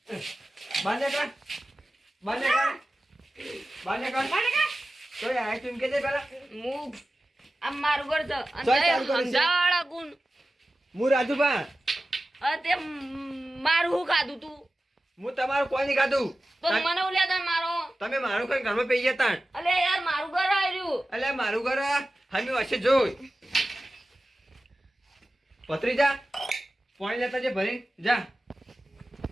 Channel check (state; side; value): normal; both; correlation 0.95